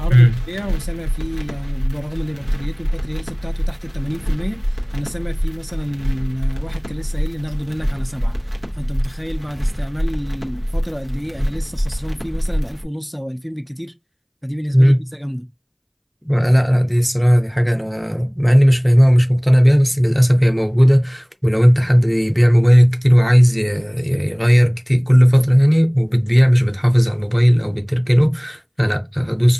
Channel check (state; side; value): identical; both; correlation 1.00